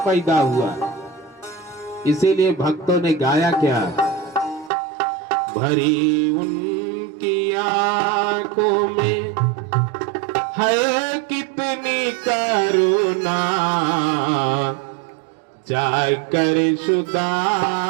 हुआ। इसीलिए भक्तों ने गाया क्या? भरी उनकी आंखों में है कितनी करुणा, जाकर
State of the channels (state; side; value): drops out; left; at 4.7 s